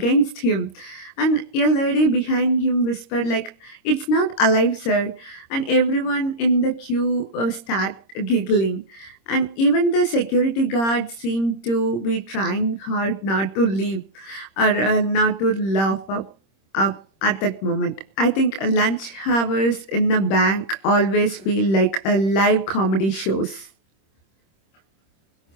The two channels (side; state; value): right; late; 26 ms